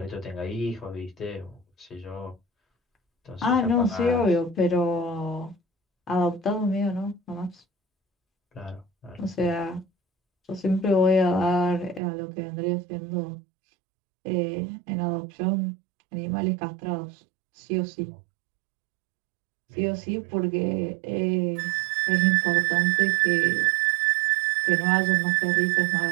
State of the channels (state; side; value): drops out; left; at 12.0 s